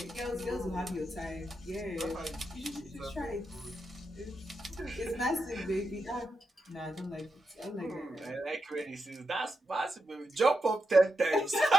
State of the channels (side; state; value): both; normal; correlation 0.86